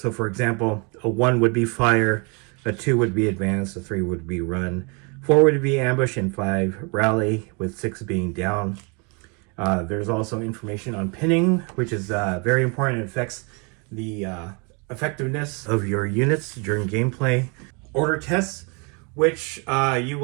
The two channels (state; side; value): quieter; left; 32.8 dB